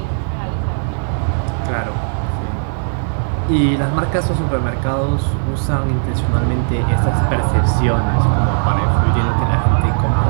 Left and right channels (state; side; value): silent; left; 68 dB below the other